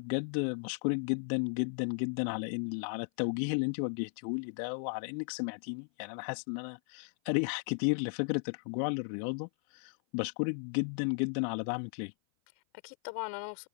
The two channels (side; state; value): right; silent; 54 dB below the other